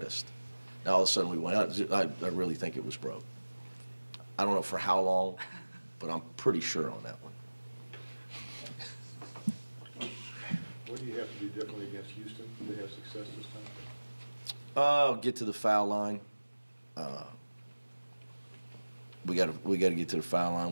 Now all of a sudden we went out. I really think it was broke. I don't know for how long, but I'm pretty sure on that one. What do you have to do differently against Houston? Do they have success this time? Get to the foul line. We got to get to the foul line.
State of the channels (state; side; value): inverted; both; correlation -1.00